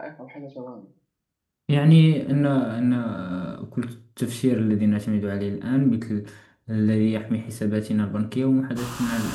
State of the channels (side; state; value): both; identical; correlation 1.00